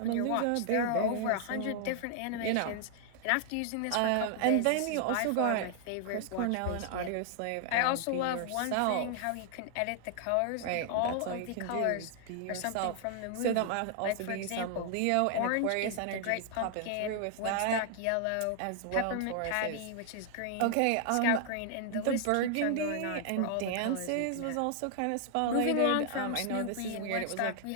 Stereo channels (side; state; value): both; different; correlation 0.00